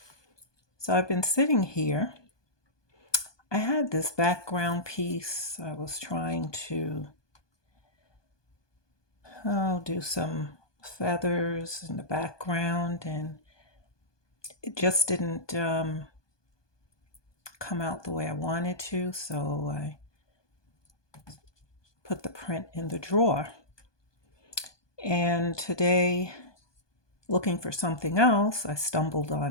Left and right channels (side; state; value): right; late; 1.2 ms